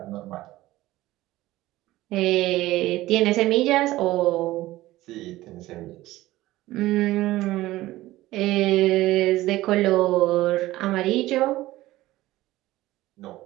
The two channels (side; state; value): left; quieter; 16.9 dB